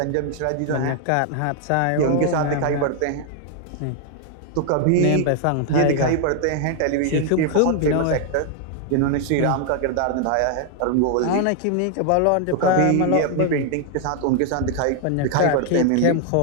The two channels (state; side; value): different; both; correlation 0.00